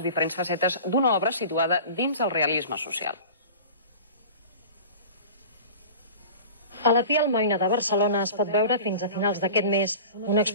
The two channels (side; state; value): both; inverted; correlation -0.37